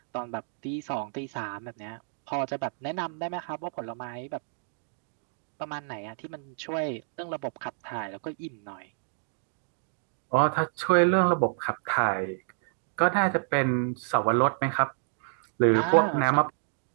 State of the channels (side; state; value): left; silent; digital silence